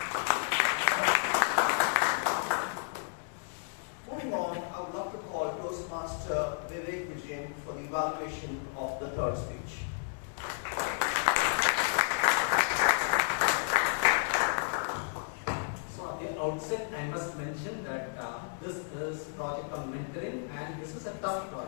Moving on, I would love to call Toastmaster Vijay for the evaluation of the third speech. Outset, I must mention that this is project on mentoring, and this is a tough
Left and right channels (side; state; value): right; silent; digital silence